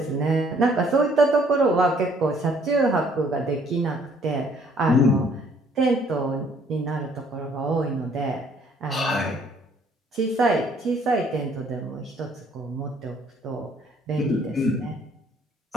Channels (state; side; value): normal; both; correlation 0.62